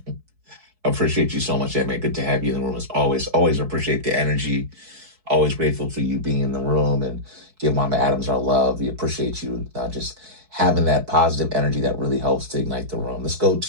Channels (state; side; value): late; left; 4.6 ms